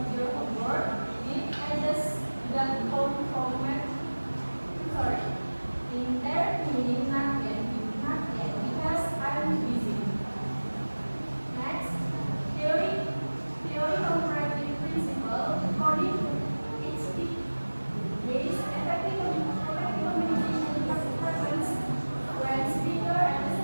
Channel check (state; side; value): inverted; both; correlation -1.00